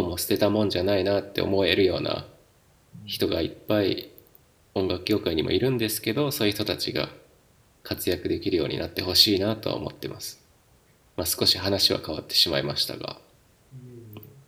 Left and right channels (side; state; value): both; identical; correlation 1.00